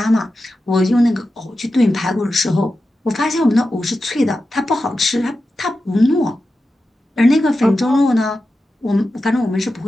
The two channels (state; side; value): normal; both; correlation 0.91